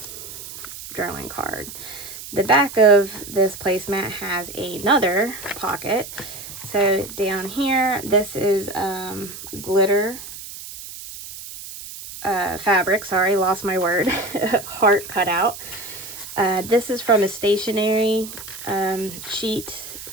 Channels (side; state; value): right; noise; hiss, 12 dB below the sound